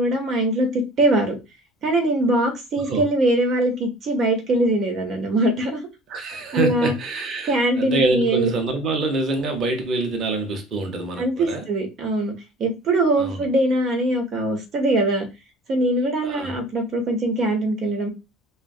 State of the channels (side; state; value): both; normal; correlation 0.46